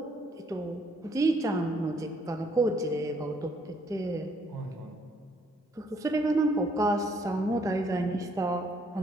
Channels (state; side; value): normal; both; correlation 0.67